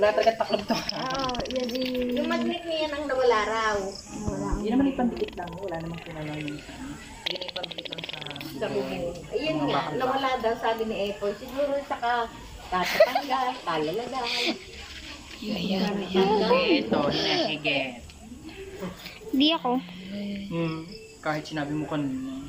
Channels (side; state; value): both; identical; correlation 1.00